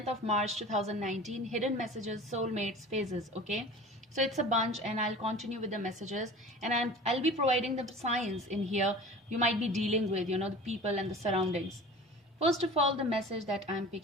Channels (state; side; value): normal; both; correlation 0.39